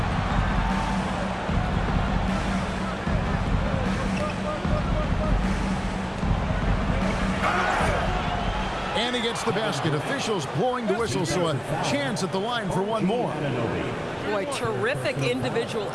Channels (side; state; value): both; identical; correlation 1.00